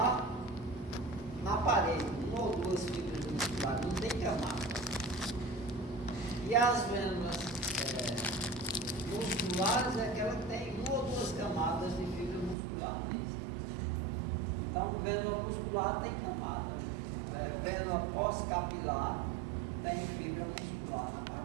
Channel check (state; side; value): drops out; left; at 12.6 s